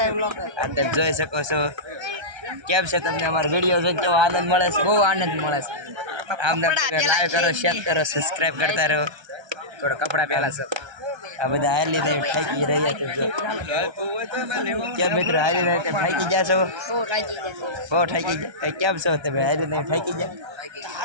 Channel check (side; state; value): left; late; 1.3 ms